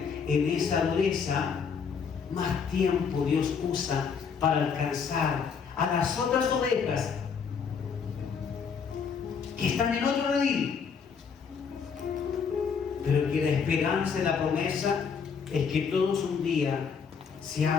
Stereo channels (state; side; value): quieter; right; 6.2 dB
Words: en esa dureza, más tiempo Dios usa para alcanzar a las otras ovejas que están en otro redil. Pero que la esperanza y la promesa es que todos un día